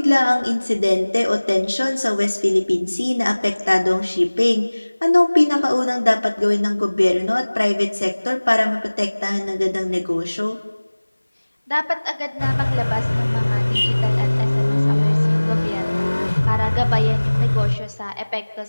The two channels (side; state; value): both; inverted; correlation -1.00